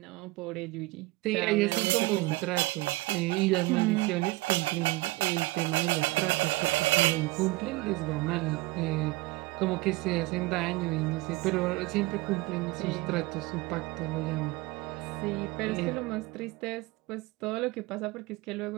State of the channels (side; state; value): left; quieter; 21.4 dB